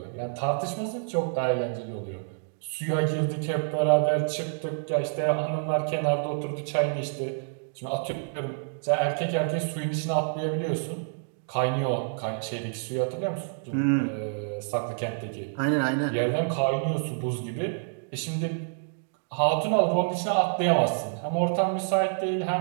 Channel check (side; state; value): left; silent; digital silence